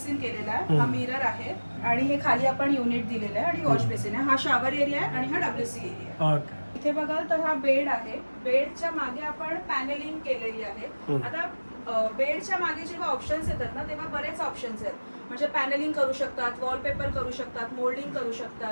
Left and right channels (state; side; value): inverted; both; correlation -1.00